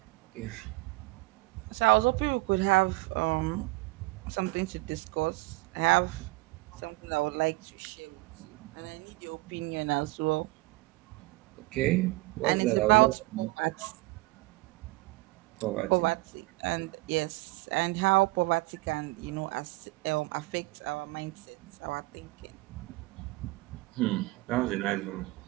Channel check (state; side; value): quieter; left; 22.0 dB